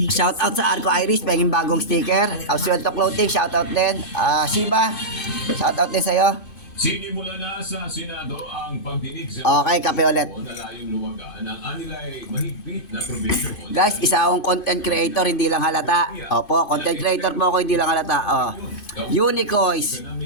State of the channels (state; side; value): late; right; 2.5 ms